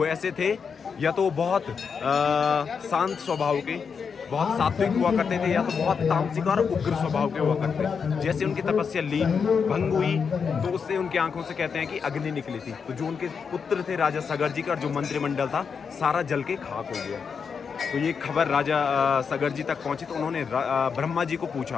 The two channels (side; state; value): right; quieter; 6.1 dB